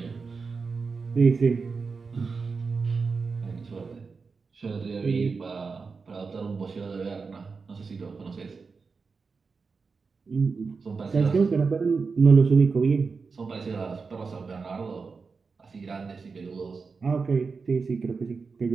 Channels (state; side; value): quieter; left; 4.8 dB